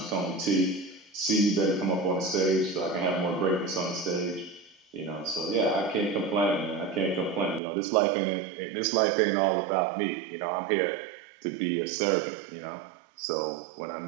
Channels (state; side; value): drops out; left; at 7.6 s